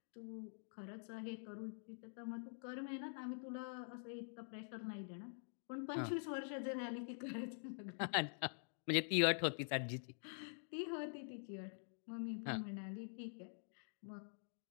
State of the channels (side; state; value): right; silent; digital silence